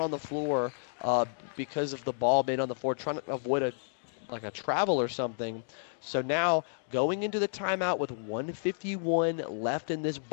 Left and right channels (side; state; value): right; silent; digital silence